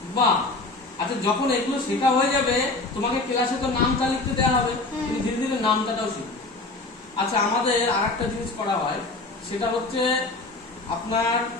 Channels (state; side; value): quieter; right; 3.2 dB